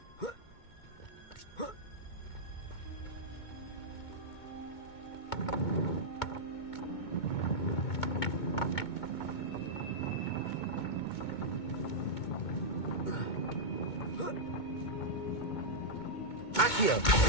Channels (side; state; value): right; late; 2.2 ms